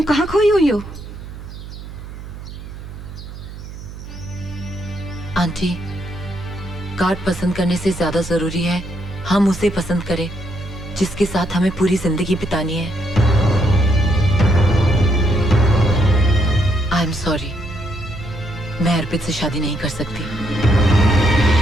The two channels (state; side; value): noise; right; hum, 13 dB below the sound